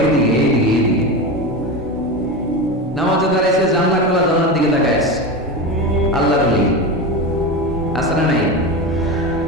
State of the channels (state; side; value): normal; both; correlation 0.21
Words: এইদিকে এইদিকে এইদিকে। নামাজে দাঁড়াইছে, জানলা খোলা, জানলার দিকে তাকাইছে, আল্লাহর ওলি আছে না নাই?